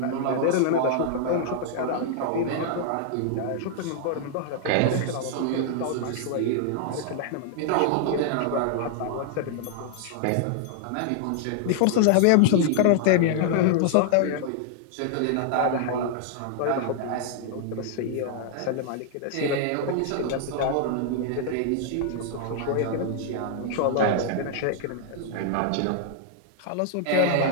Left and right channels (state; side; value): different; both; correlation -0.01